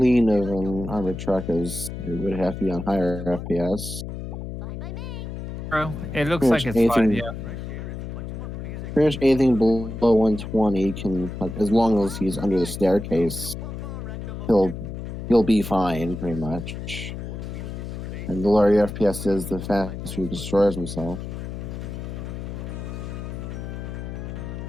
of an armored truck as it would have to be on higher FPS. Fine by me. bro. It looks Pretty like much it's fine. anything- Yeah. Pretty much anything below 120 can, like, as long as he's under the staircase, he'll be fine, pretty much. And the lower your FPS is, the faster he destroys himself.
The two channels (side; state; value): left; noise; hum, 7 dB below the sound